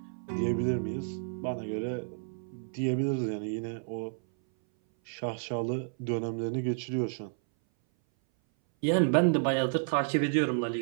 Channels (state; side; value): silent; left; 57 dB below the other